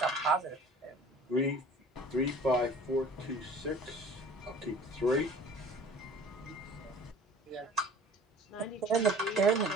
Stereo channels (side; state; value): both; normal; correlation 0.46